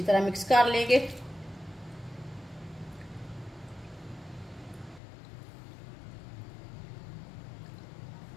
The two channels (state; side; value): drops out; right; at 5.0 s